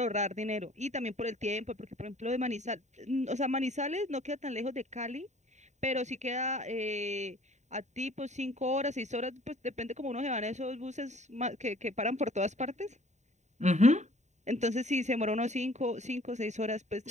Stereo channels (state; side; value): late; left; 0.34 ms